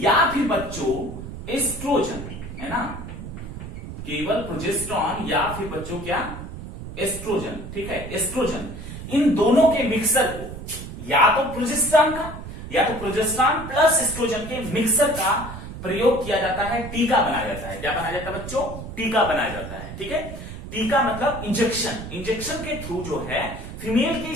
फिर बच्चों एस्ट्रोजन, है ना, केवल प्रोजेस्टेरॉन या फिर बच्चों क्या? एस्ट्रोजन, ठीक है, एस्ट्रोजन, इन दोनों के मिक्सर को या तो प्रोजेस्टेरॉन प्लस एस्ट्रोजन के मिक्सर का प्रयोग किया जाता है, टीका बनाया जाता है। क्या बनाया जाता है बच्चों? टीका बनाया जाता है, ठीक है। टीका मतलब इंजेक्शन के थ्रू जो है फीमेल की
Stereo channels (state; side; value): noise; right; rumble, 10 dB below the sound